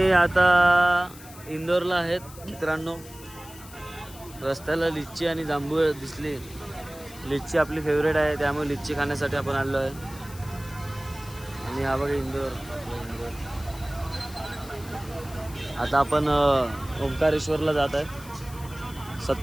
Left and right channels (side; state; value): left; noise; hiss, 18 dB below the sound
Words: आता इंदोरला आहेत मित्रांनो. रस्त्याला लिच्ची आणि जांभूळ दिसली. लिच्ची आपली फेवरेट आहे, त्यामुळे लिच्ची खाण्यासाठी आपण आलो आहे. आणि हा बघा इंदोर. आता आपण ओंकारेश्वरला जात आहे.